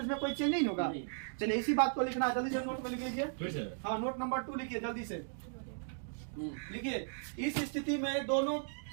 में कोई चेंज नहीं होगा। चलिए इसी बात को लिखना, जल्दी से नोट में लिख लीजिए। हाँ, नोट नंबर 2 लिखिए जल्दी से, लिखिए। इस स्थिति में दोनों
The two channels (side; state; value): left; silent; digital silence